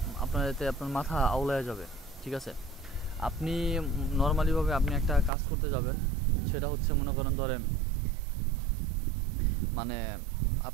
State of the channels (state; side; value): drops out; left; at 5.3 s